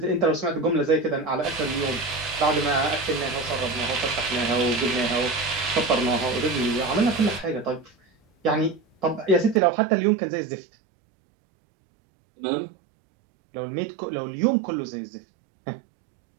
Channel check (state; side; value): drops out; left; at 9.6 s